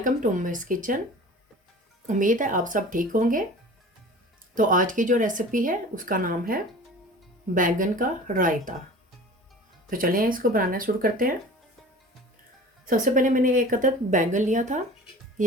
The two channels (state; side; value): normal; both; correlation 0.41